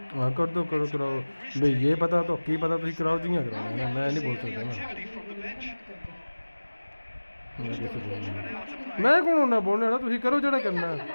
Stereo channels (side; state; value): both; inverted; correlation -1.00